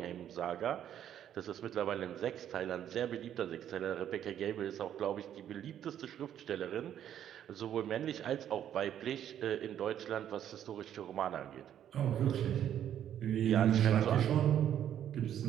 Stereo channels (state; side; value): quieter; left; 10.3 dB